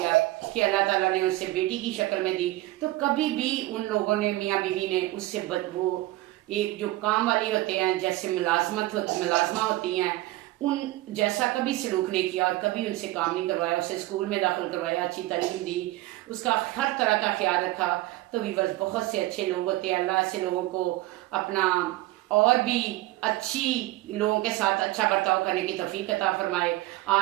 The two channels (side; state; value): left; quieter; 17.7 dB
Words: कि अल्लाह ताला ने उससे बेटी की शक्ल में दी। तो कभी भी उन लोगों ने, मियाँ बीवी ने उससे वो एक जो काम वाली होते हैं जैसे मुलाजमा होती हैं उन जैसा कभी सलूक नहीं किया और कभी उनसे काम नहीं करवाया, उसे स्कूल में दाखिल करवाया, अच्छी तालीम दी, उसका हर तरह का ख्याल रखा। तो वीवर्स बहुत से अच्छे लोग होते हैं, अल्लाह ऐसे लोगों को अपना और भी अच्छी लोगों के साथ अच्छा बर्ताव करने की तौफीक अता फरमाए,